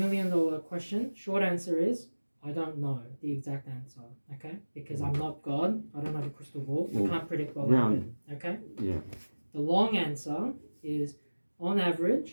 question, short answer is I don't know the exact answer. Okay, because I'm not God. I don't have a crystal ball. I can't predict what will happen. Okay. yeah, The long answer is, on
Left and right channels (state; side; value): inverted; both; correlation -1.00